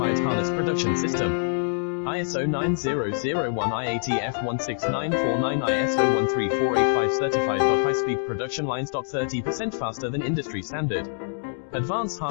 harness production system. ISO 9001 IATF 16949 ISO 13485 certified. High-speed production lines. 30% faster than industry standard. Advanced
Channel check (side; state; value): right; silent; digital silence